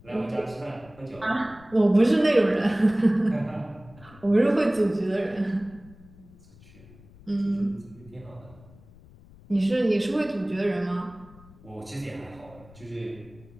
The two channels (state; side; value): noise; left; rumble, 23 dB below the sound